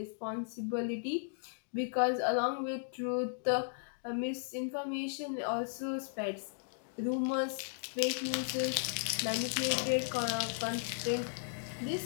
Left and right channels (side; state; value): right; silent; digital silence